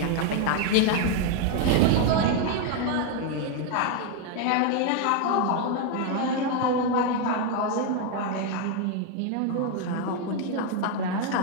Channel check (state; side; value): different; both; correlation 0.01